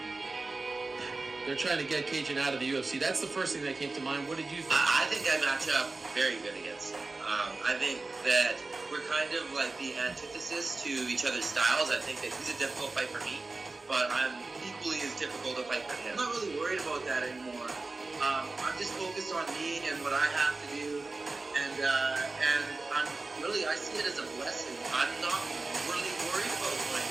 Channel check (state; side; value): quieter; left; 3.5 dB